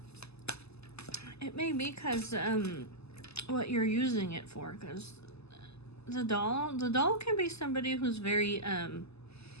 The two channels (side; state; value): right; late; 0.79 ms